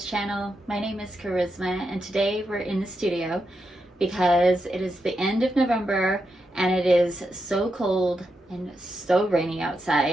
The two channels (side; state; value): both; normal; correlation 0.85